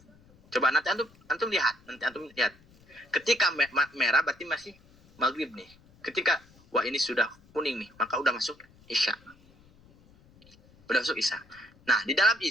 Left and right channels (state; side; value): noise; left; rumble, 28 dB below the sound